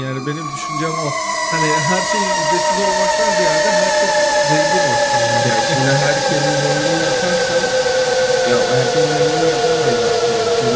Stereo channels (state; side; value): identical; both; correlation 1.00